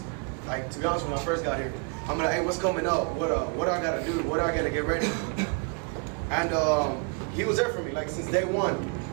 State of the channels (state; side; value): quieter; left; 36.0 dB